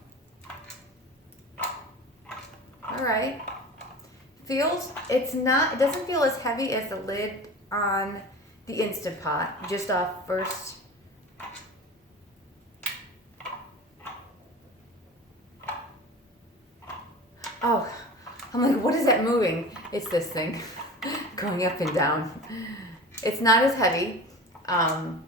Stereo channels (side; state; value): both; normal; correlation 0.35